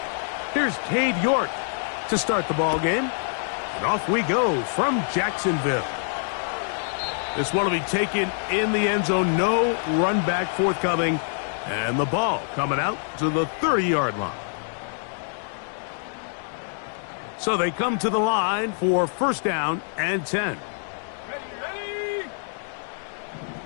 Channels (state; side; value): silent; right; digital silence